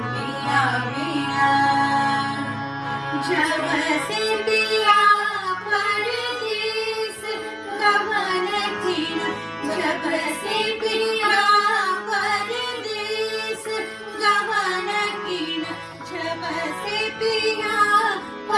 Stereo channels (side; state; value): both; identical; correlation 1.00